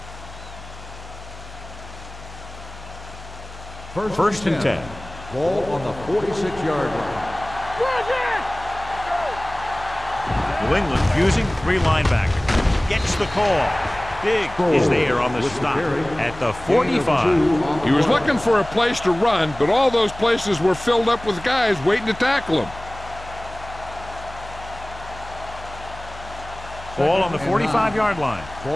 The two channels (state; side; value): noise; left; hum, 16 dB below the sound